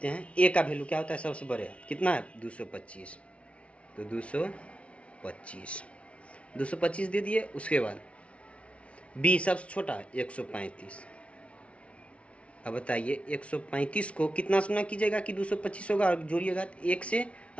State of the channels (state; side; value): late; right; 0.062 ms